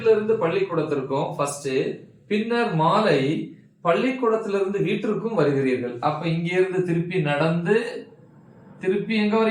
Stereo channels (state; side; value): identical; both; correlation 1.00